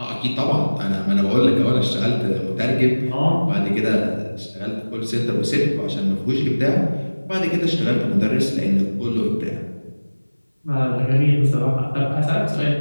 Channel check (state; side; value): inverted; both; correlation -1.00